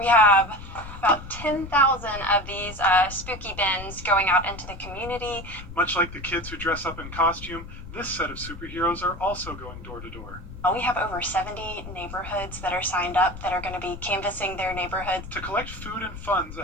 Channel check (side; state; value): left; noise; rumble, 12 dB below the sound